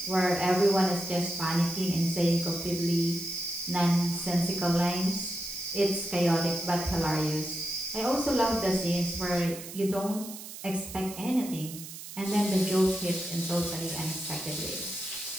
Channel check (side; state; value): right; noise; hiss, 12 dB below the sound